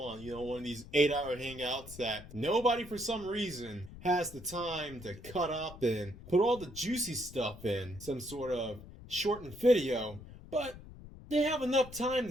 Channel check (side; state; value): left; noise; rumble, 16 dB below the sound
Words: on one of these 8-hour hangouts, that nobody for some reason has the time to cut up and put all the juicy stuff in some sort of shortened video, but they have enough time